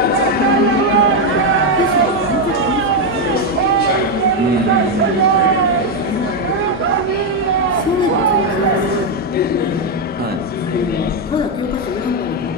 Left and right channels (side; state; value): both; normal; correlation 0.04